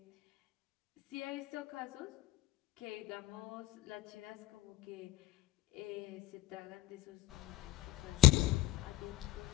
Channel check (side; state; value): right; quieter; 15.7 dB